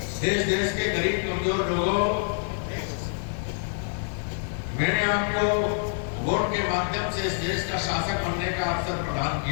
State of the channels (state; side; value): silent; right; 55 dB below the other